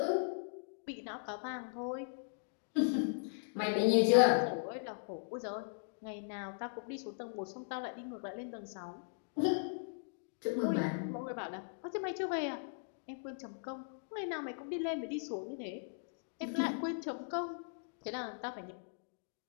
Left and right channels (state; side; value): silent; right; digital silence